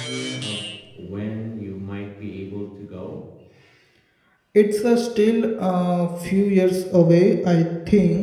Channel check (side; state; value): both; identical; correlation 1.00